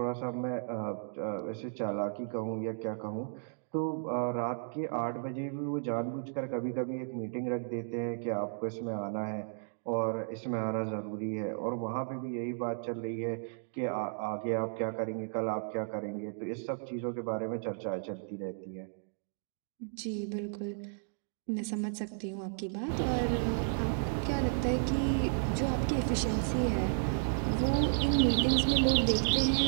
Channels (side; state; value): left; silent; digital silence